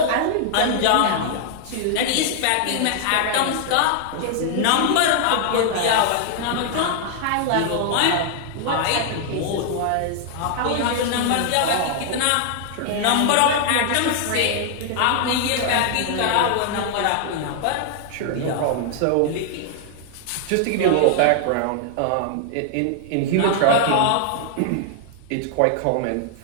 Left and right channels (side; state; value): both; different; correlation 0.00